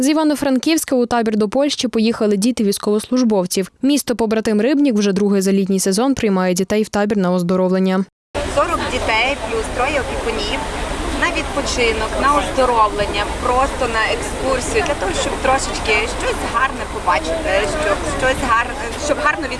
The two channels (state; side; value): identical; both; correlation 1.00